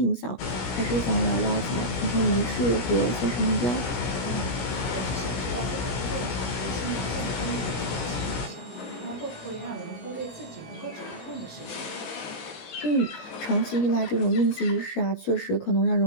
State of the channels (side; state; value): right; late; 17 ms